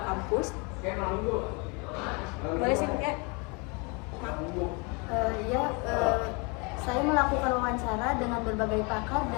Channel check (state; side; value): quieter; right; 31.0 dB